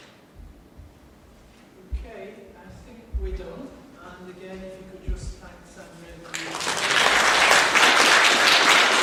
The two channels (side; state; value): both; identical; correlation 1.00